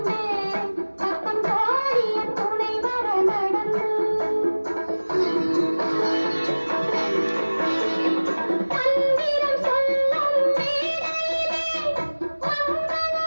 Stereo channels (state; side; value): inverted; both; correlation -1.00